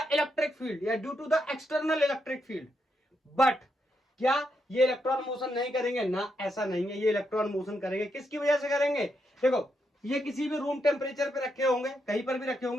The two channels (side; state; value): both; normal; correlation 0.81